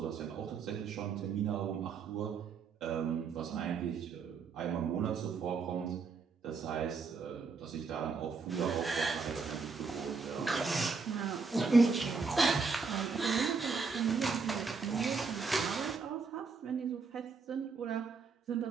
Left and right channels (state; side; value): quieter; left; 4.9 dB